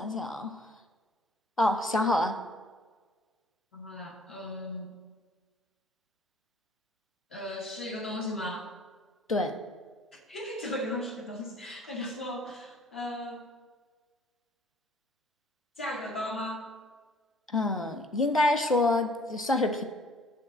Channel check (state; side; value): normal; both; correlation 0.56